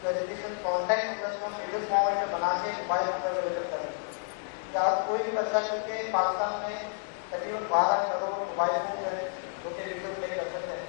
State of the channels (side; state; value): right; silent; 58 dB below the other